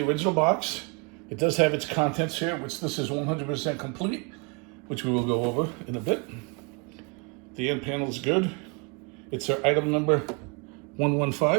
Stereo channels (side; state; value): left; quieter; 32.7 dB